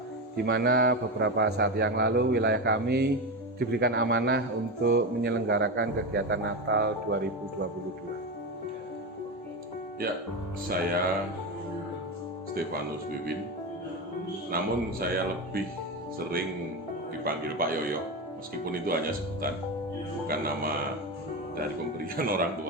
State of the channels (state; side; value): normal; both; correlation 0.17